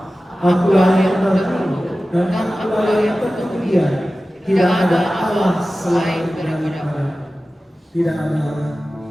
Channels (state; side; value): normal; both; correlation 0.95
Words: Akulah yang bertemu dan akulah yang tersedia. Tidak ada Allah selain daripada Tidak ada Allah